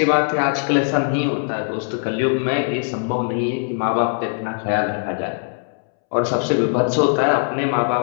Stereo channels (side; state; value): right; silent; 65 dB below the other